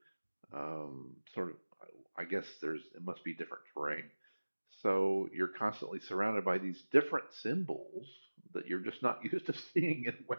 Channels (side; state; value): both; inverted; correlation -1.00